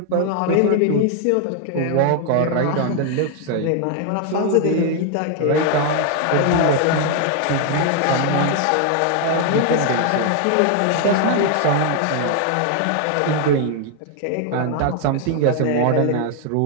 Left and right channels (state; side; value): different; both; correlation 0.00